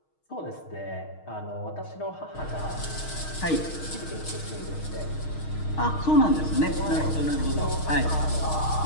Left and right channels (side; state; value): right; late; 6.4 ms